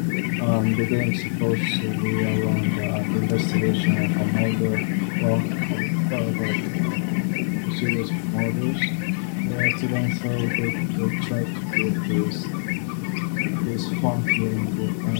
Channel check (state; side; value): silent; right; digital silence